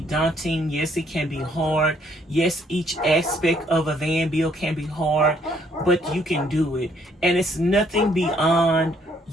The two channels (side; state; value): both; normal; correlation 0.67